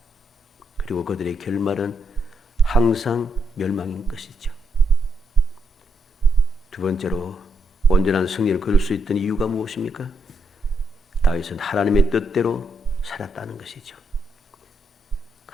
그리고 그들의 결말은 항상 멸망인 것이죠. 두 번째로 온전한 승리를 거둘 수 있던 이유가 무엇입니까? 다윗은 하나님의 뜻대로 살았다는 것이죠.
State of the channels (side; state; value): both; normal; correlation 0.79